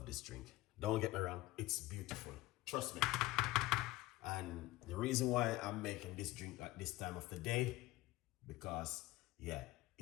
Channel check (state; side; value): quieter; right; 18.3 dB